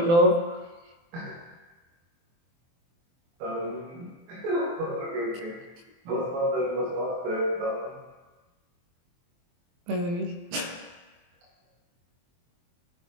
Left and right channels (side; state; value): left; late; 23 ms